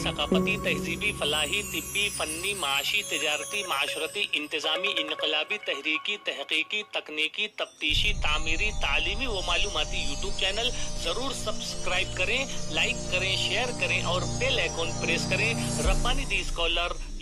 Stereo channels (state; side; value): identical; both; correlation 1.00